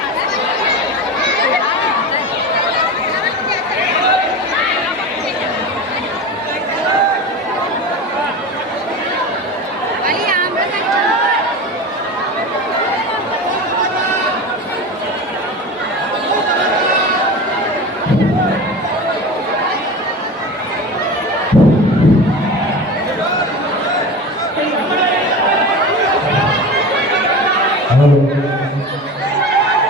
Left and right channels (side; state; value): both; normal; correlation 0.29